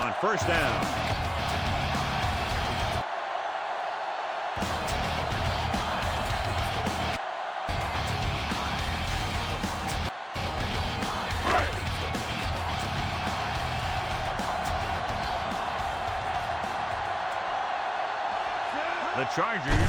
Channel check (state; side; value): identical; both; correlation 1.00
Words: first down. The